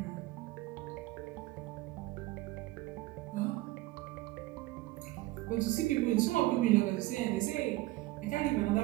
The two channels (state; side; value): quieter; left; 18.4 dB